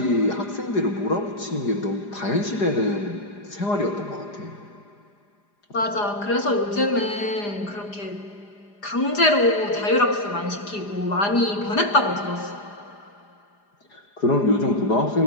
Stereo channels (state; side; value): late; right; 4.9 ms